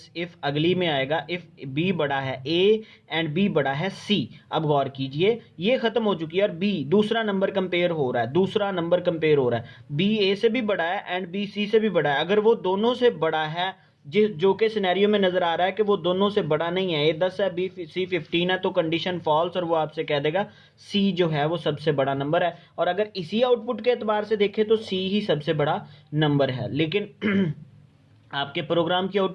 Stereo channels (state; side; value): identical; both; correlation 1.00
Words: इफ, अगली में आएगा इफ बी बड़ा है ए एंड बी बड़ा है सी। अब गौर कीजिए ये खत्म हो चुकी है और बी दूसरा नंबर कंपेयर हो रहा है, दूसरा नंबर कंपेयर हो रहा है, बी ए से भी बड़ा है एंड बी सी से भी बड़ा है। अगर वो दोनों से बड़ा है, जो के सिनेरियो में नजर आ रहा है कि वो दोनों से बड़ा नहीं है, ए 10 है बी सी 15 है, तो कंडीशन फॉल्स, और वो आपसे कह देगा सी जो है वो सबसे बड़ा नंबर है। और अगर इसी आउटपुट के एतबार से देखें तो सी ही सबसे बड़ा नंबर है। लेकिन आपके प्रोग्राम की